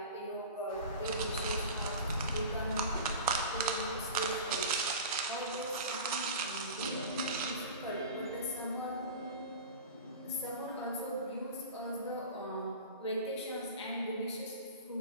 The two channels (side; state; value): both; inverted; correlation -0.33